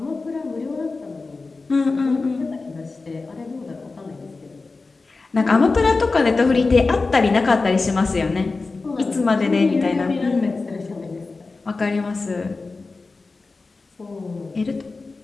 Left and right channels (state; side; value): quieter; right; 3.8 dB